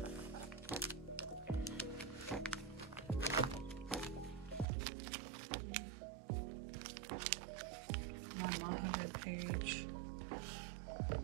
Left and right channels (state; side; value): drops out; left; at 4.7 s